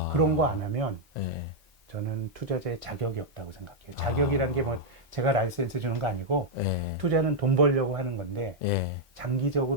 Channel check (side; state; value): both; normal; correlation -0.02